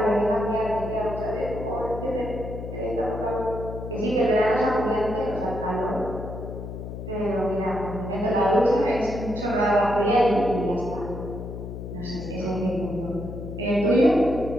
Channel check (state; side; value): noise; left; hum, 8 dB below the sound